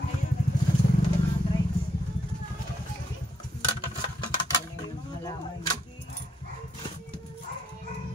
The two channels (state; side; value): normal; both; correlation 0.75